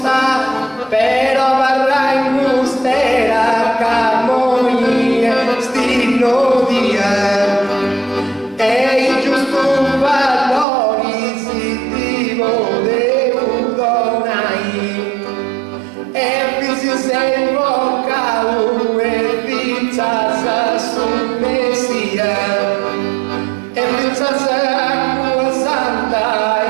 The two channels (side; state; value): left; drops out; at 10.7 s